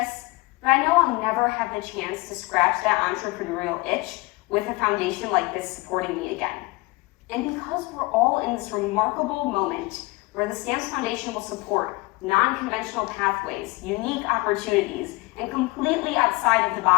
but I know I'll never have the chance to scratch that entrepreneurial itch with a foundation like this supporting me again. And because we're all in this remarkable moment where the STAMPS Foundation will support non-conventional pathways, unique opportunities, and completely outside of the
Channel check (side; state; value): right; quieter; 23.0 dB